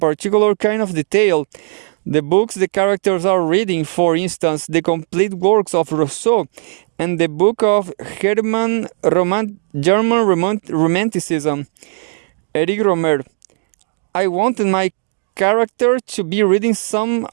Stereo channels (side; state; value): left; silent; 60 dB below the other